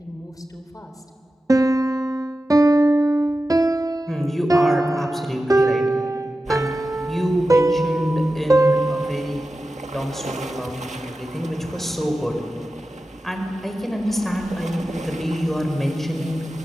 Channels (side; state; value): both; normal; correlation 0.93